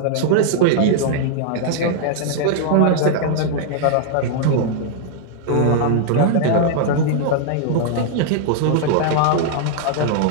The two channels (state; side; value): different; both; correlation -0.01